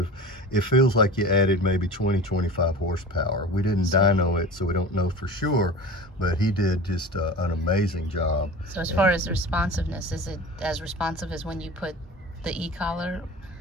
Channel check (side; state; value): both; normal; correlation 0.35